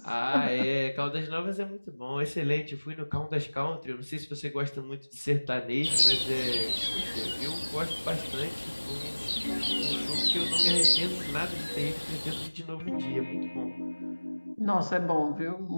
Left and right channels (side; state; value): both; inverted; correlation -1.00